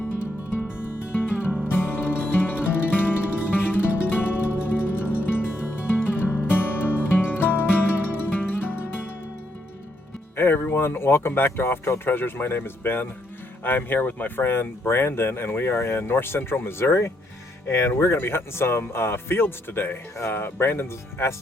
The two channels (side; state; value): both; normal; correlation 0.75